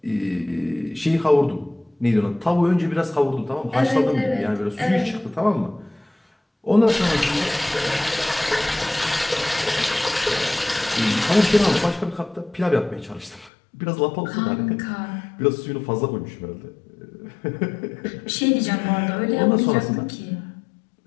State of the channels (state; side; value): drops out; right; at 13.5 s